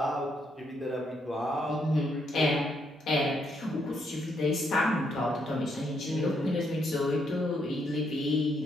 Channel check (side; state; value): both; normal; correlation 0.75